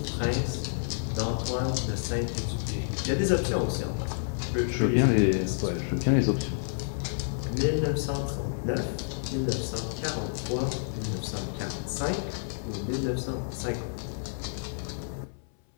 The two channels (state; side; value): silent; right; 58 dB below the other